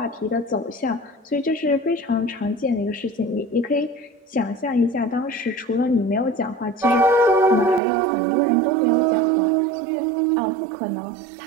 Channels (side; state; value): left; drops out; at 7.8 s